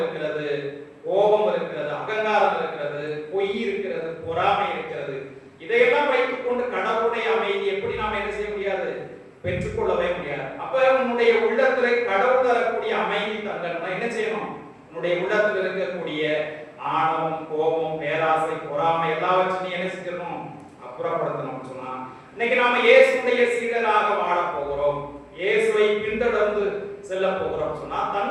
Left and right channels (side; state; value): both; identical; correlation 1.00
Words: கோபம் இருக்கிறது, அகங்காரம் இருக்கிறது, பொய் இருக்கிறது, பொறாமை இருக்கிறது. இதையெல்லாம் வைத்துக் கொண்டு கடவுளுடைய அமைதி எப்படி நாம என்ன செய்ய முடியாது? பெற்றுக்கொள்ளவே முடியாது. அப்ப உன்னுடைய உள்ளத்துல கடவுள் தரக்கூடிய அமைதி தங்கணும்னா என்ன செய்யணும்? உன்னுடைய உள்ளத்துல இருக்கக்கூடிய ஆணவம், கோபம், பேராசை, பொறாமை எல்லாவற்றையும் என்ன செஞ்சிடணும்? அப்புறப்படுத்தணும் சொன்னா, இன்னைக்கு நாம இயேசுடைய சீடராக வாழ போகிறோம், இயேசுவை பின்தொடர்ந்து செல்ல போகிறோம் சொன்னா